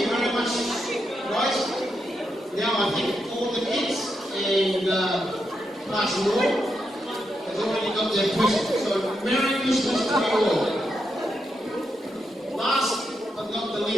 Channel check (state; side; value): normal; both; correlation 0.83